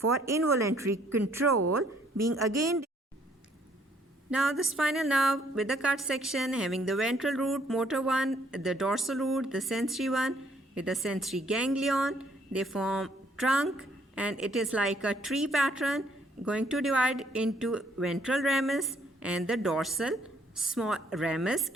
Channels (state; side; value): normal; both; correlation 0.65